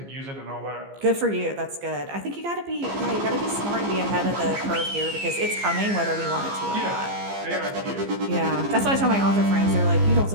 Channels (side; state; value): left; late; 15 ms